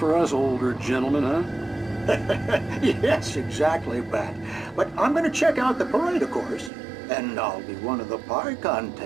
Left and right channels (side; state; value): left; drops out; at 6.7 s